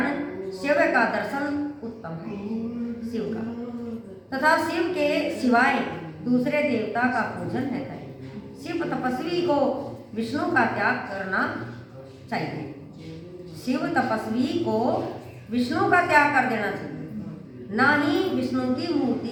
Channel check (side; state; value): both; identical; correlation 1.00